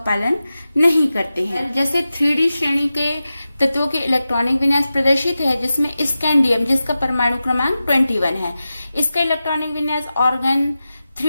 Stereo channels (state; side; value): inverted; both; correlation -0.93